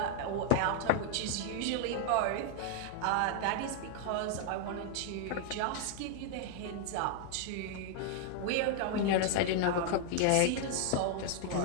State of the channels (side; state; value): both; different; correlation -0.01